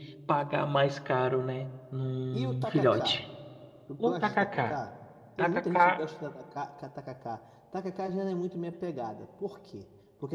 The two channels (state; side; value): identical; both; correlation 1.00